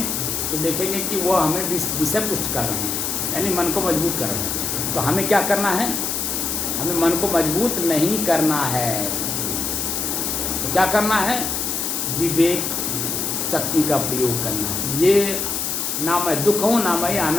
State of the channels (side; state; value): left; noise; hiss, 1 dB below the sound